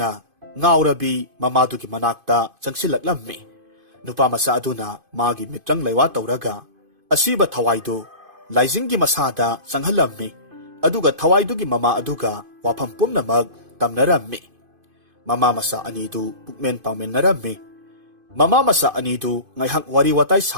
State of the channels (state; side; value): late; left; 2.5 ms